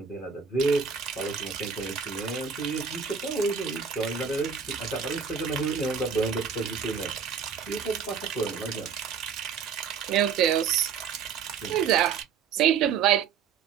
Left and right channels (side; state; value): left; quieter; 6.7 dB